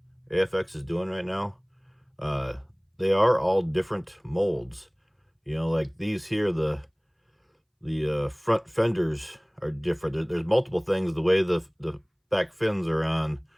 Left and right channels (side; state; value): both; identical; correlation 1.00